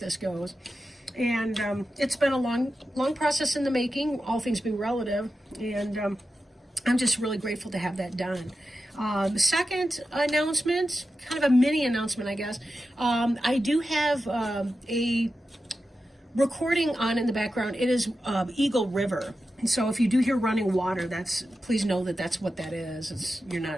goes. And it's been a long process in the making, all things being relative, and I'm just really grateful to have that done. The second announcement, kind of a mini announcement, I guess. I do have a recording on in the background. It is Eagle River. And so if you do hear running water, please know that that's what that is. You're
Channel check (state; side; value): normal; both; correlation 0.91